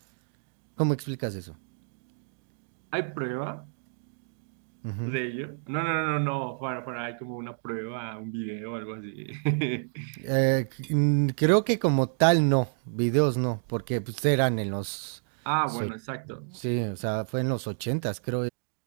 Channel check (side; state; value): left; silent; digital silence